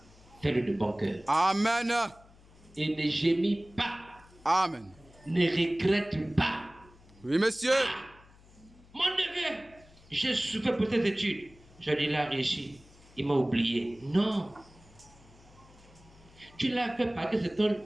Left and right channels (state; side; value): noise; left; hum, 25 dB below the sound